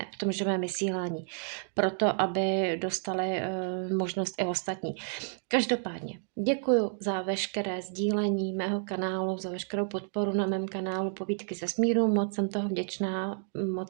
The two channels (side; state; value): left; silent; 58 dB below the other